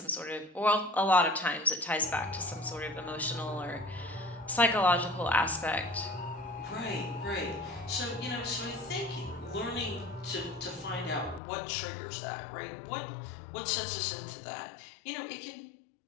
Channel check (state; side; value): drops out; right; at 11.4 s